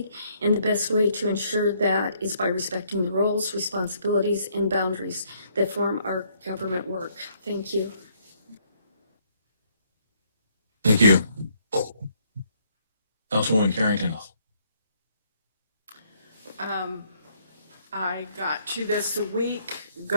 and the best way to ensure that is by respecting the roles, responsibilities, and boundaries that form our government work. Thank you. Thank you. Councilwoman Carrington. I got to this week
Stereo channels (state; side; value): inverted; both; correlation -0.68